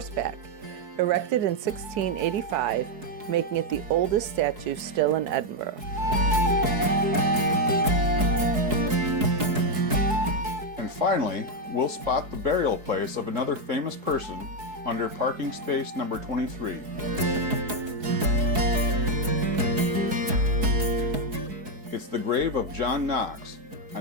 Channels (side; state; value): left; late; 4.7 ms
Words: erected in 1685, making it the oldest statue still in Edinburgh. And finally, we'll spot the burial place of another famous person under parking space number 23. It's the grave of John Knox,